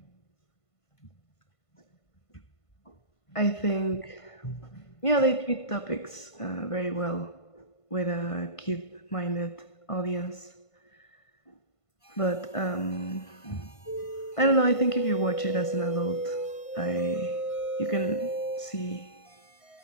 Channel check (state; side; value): late; right; 1.5 ms